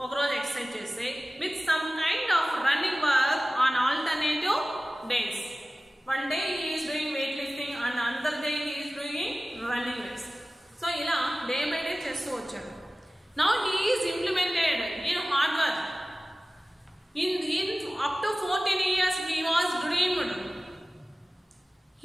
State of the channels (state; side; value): normal; both; correlation 0.97